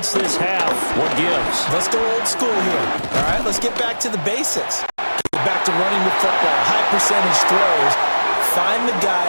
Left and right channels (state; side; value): inverted; both; correlation -1.00